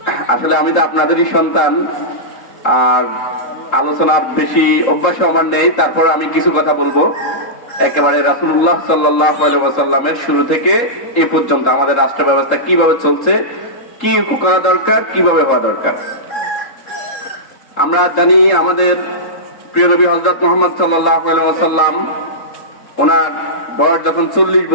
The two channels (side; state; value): right; late; 3.7 ms